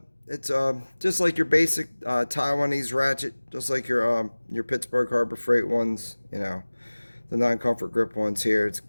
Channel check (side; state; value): both; inverted; correlation -1.00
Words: it's just like your basic Taiwanese ratchet, just like your Pittsburgh Harbor Freight ones, the non-comfort grip ones here. It's